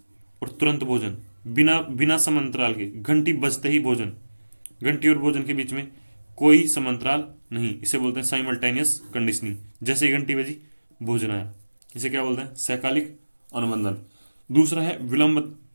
और तुरंत भोजन, बिना बिना समांतराल के, घंटी बजते ही भोजन, घंटी और भोजन के बीच में कोई समांतराल नहीं, इसे बोलते हैं साइमल्टेनियस कंडीशनिंग। जैसे ही घंटी बजी भोजन आया, इसे क्या बोलते हैं? सहकालिक अनुबंधन। दूसरा है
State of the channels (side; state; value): both; inverted; correlation -1.00